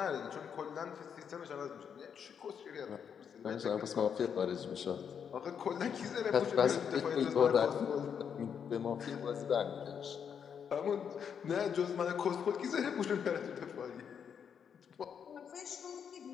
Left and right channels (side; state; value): right; quieter; 7.5 dB